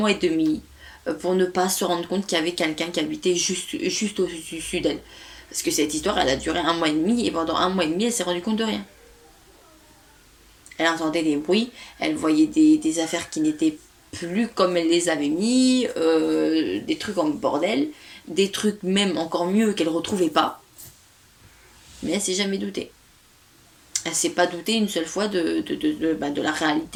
et demi pour ne pas se rendre compte qu'il y avait quelqu'un qui habitait juste au-dessus d'elle. Parce que cette histoire, elle a duré un mois et demi, et pendant un mois et demi, elle s'est rendue compte de rien. Elle entendait des bruits, elle voyait des affaires qui n'étaient plus comme elle les avait mis, des trucs en bordel, des trucs même encore mieux qu'elle ne retrouvait pas. Mais elle s'est jamais doutée. Elle s'est pas doutée une seule fois de la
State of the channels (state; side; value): identical; both; correlation 1.00